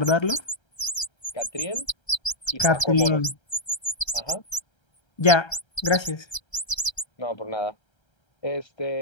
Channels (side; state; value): right; late; 1.3 ms